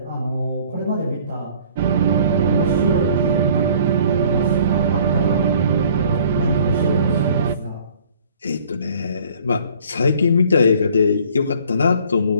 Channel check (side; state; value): both; inverted; correlation -0.53